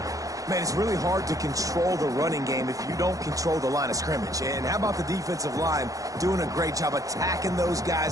Man, it's really hard to control the running game if you don't control the line of scrimmage. And how about the defensive line doing a great job attacking those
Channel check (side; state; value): left; late; 0.17 ms